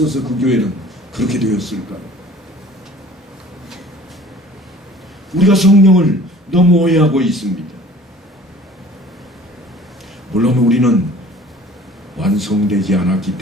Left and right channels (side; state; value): both; normal; correlation 0.48